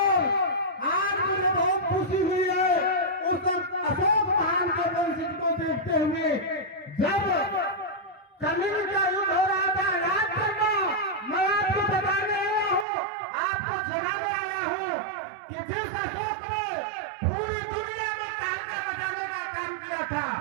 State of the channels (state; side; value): drops out; left; at 12.9 s